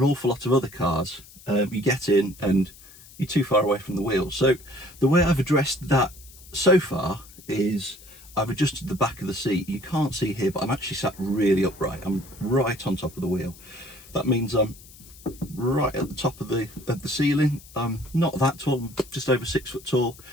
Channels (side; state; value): left; noise; hiss, 21 dB below the sound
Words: awful lot of other cars, you get in and you're too far away from the wheel. So the way I've addressed that so far is I've adjusted the back of the seat. You can't see here, but I'm actually sat really upright. I'm right on top of the wheel. That means I'm right at the top of the ceiling. I'm not that tall, I'm just over 6 foot tall,